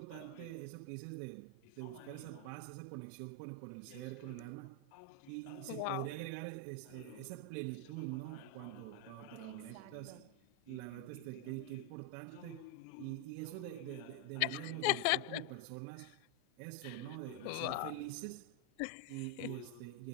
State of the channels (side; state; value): both; different; correlation 0.01